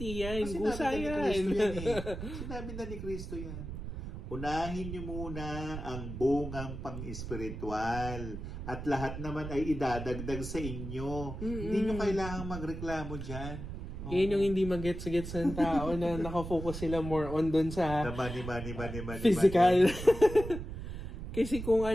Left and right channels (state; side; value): noise; right; rumble, 8 dB below the sound